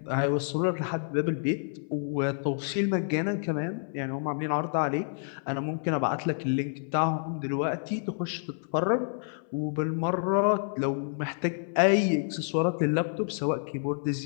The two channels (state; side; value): silent; right; 59 dB below the other